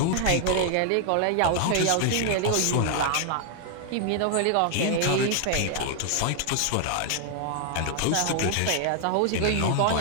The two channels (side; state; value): both; different; correlation 0.00